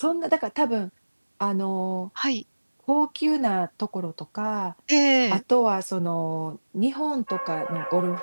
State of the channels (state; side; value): inverted; both; correlation -1.00